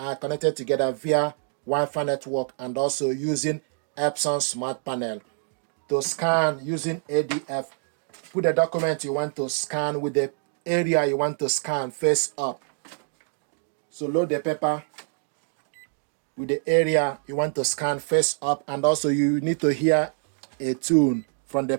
connected together via Wi-Fi network and also using Epson Smart Panel. To scan using ADF, put the document you want to scan with the area you want to scan face up. So load the paper with the area you want to scan face up, and also you need to hear a tune from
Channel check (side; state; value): left; silent; 57 dB below the other